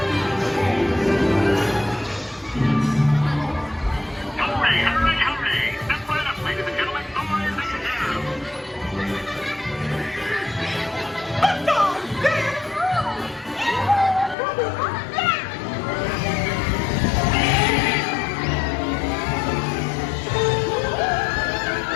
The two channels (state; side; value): drops out; right; at 14.4 s